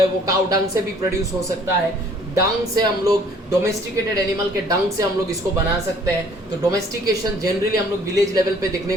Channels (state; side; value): normal; both; correlation 0.57